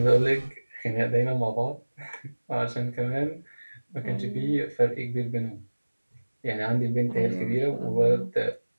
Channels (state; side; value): inverted; both; correlation -1.00